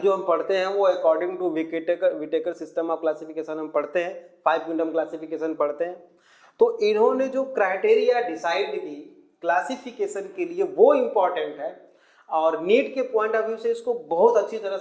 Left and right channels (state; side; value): identical; both; correlation 1.00